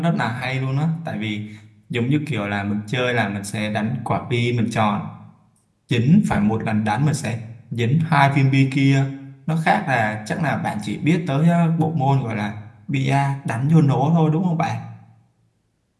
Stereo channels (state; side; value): identical; both; correlation 1.00